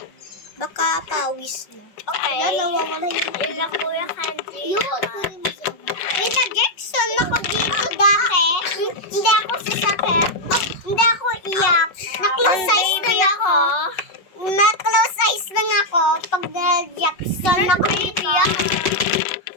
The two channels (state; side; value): late; right; 5.3 ms